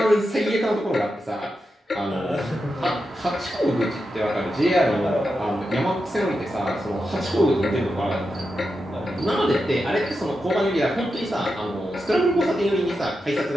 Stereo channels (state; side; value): normal; both; correlation 0.88